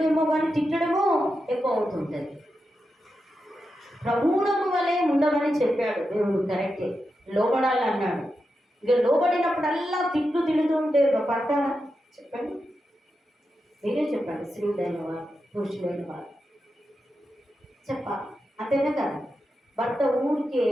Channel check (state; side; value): normal; both; correlation 0.88